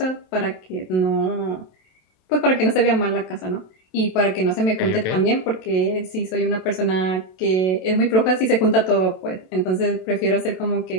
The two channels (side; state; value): right; late; 27 ms